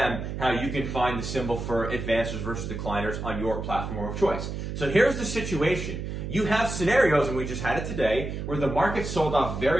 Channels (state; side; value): noise; right; hum, 5 dB below the sound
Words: how you can find the symbol for advancers versus decliners on your platform of choice. So here's the situation. You have scenarios, and we just had it today, where the market sold off